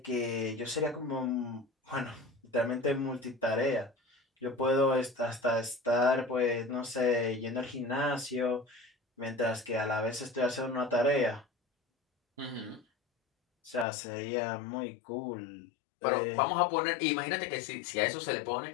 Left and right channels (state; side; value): drops out; right; at 13.9 s